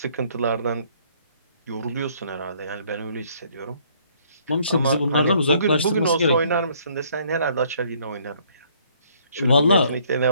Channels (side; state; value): both; inverted; correlation -0.63